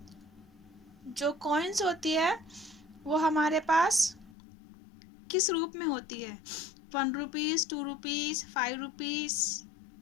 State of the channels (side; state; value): right; drops out; at 4.3 s